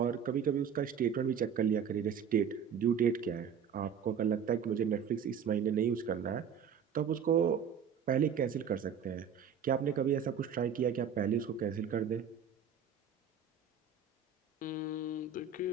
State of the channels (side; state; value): left; quieter; 7.2 dB